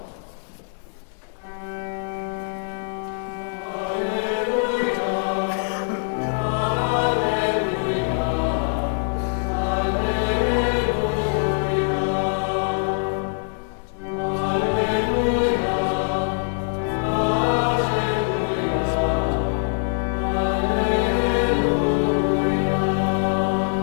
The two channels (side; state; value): right; silent; digital silence